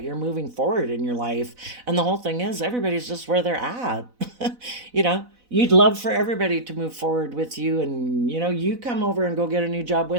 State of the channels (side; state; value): left; late; 4.0 ms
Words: you're moving forward in your life. And the whole thing is, everybody's just where they're at. You'd love for everybody to move forward with you, and you come over and go get a new job